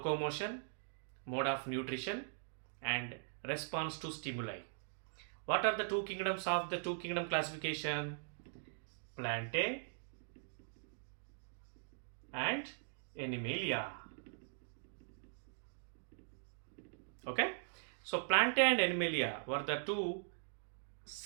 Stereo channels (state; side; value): silent; left; digital silence